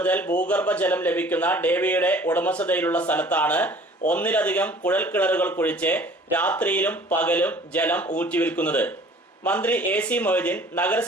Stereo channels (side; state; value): both; normal; correlation 0.50